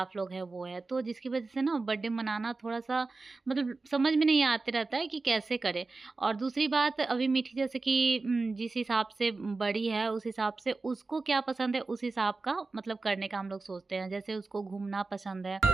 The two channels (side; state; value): left; quieter; 3.7 dB